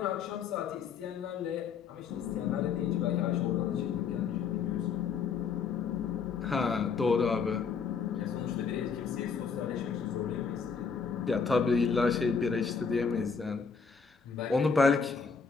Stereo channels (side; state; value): right; quieter; 5.7 dB